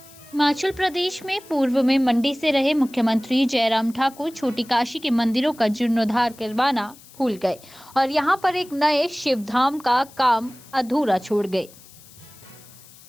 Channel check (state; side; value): noise; left; hiss, 22 dB below the sound